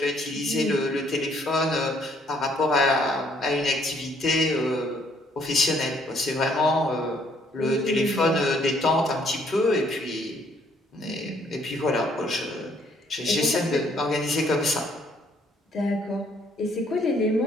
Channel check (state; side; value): normal; both; correlation 0.66